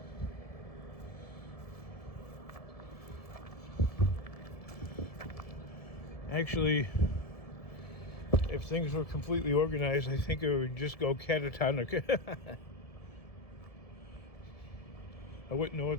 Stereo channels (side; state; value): right; late; 1.7 ms